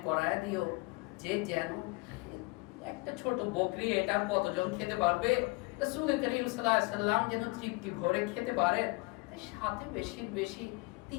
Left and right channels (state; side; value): quieter; right; 26.3 dB